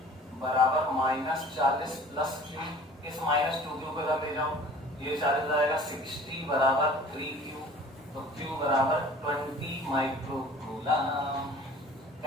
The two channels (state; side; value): normal; both; correlation 0.46